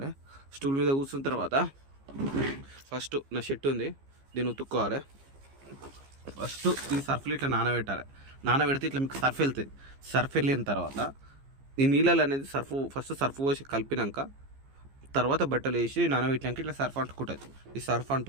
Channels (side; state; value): left; late; 15 ms